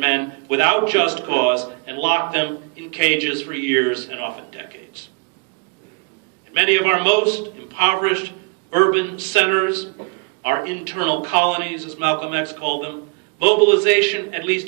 without just cause, and lock them in cages for years and often decades. In many of our most impoverished urban centers, our internal colonies, as Malcolm X called them, mobilization, at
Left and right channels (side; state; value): left; quieter; 34.1 dB